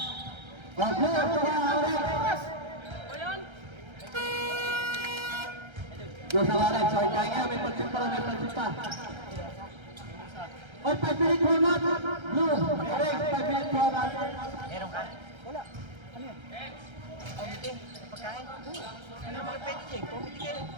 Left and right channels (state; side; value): late; left; 1.3 ms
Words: Oh, blue, orange. O yan. Blue sa orange. So, kaya nga, may pansin pa, may pansin pa. Oh, 5 minutes format. Blue, orange, 5 minutes format. Meron ka? Wala. Ano yan? Komite? Pagkain? Ano mga pwede dyan? Komite kayo?